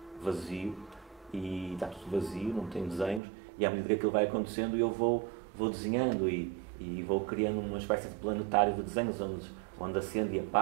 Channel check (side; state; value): left; drops out; at 3.2 s